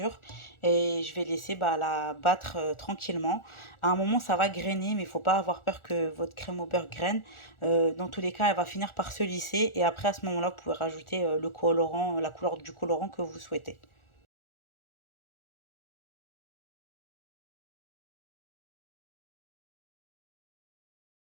et je vais laisser la battre tranquillement. À un moment, ça va grainer, mais il ne faut pas avoir peur que votre crème au beurre graine. Dans tous les cas, elle va finir par se lisser et après, à ce moment-là, vous pouvez rajouter le colorant, la couleur du colorant que vous souhaitez.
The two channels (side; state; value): right; late; 1.4 ms